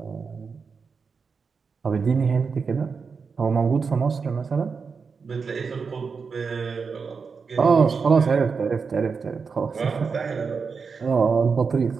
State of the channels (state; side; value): quieter; left; 5.3 dB